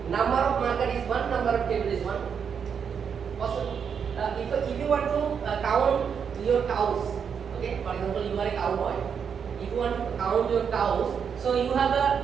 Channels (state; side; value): quieter; left; 7.0 dB